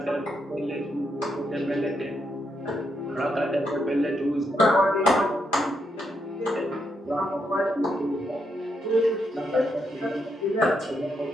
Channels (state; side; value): normal; both; correlation 0.80